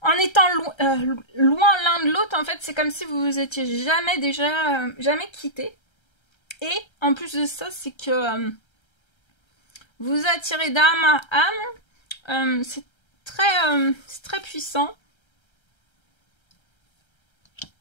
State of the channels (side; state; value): right; late; 1.3 ms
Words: En étant loin l'un de l'autre, en fait, c'est comme si vous vous étiez jamais quittés. Et en plus de ça, c'est que vous attirez d'âme à âme. C'est très puissant.